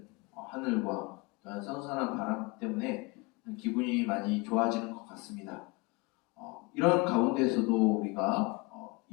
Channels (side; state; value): right; quieter; 25.8 dB